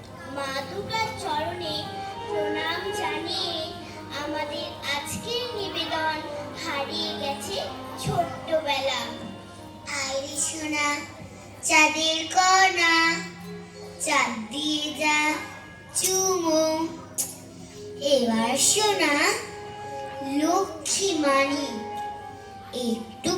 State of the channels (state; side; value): identical; both; correlation 1.00